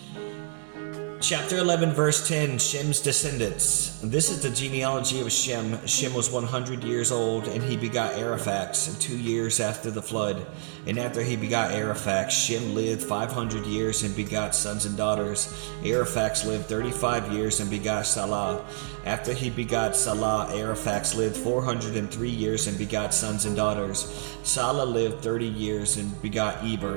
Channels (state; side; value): silent; left; digital silence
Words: Chapter 11, verse 10, Shem's descendants. This is the genealogy of Shem. Shem was 100 years old, and he begot Ariphax 2 years after the flood. And after he begot Ariphax, Shem lived 500 years and begot sons and daughters. Ariphax lived 35 years and begot Salah. After he begot Salah, Ariphax lived 403 years and begot sons and daughters. Salah lived 30 years and begot